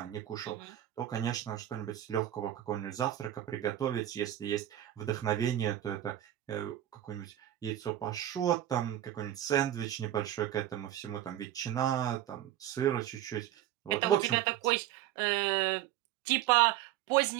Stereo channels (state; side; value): quieter; left; 12.6 dB